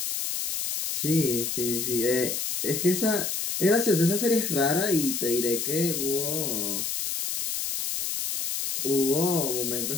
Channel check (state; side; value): noise; left; hiss, 2 dB below the sound